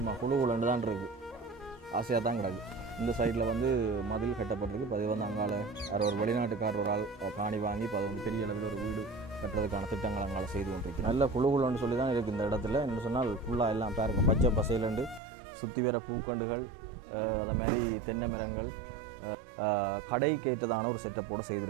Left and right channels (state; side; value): drops out; left; at 15.2 s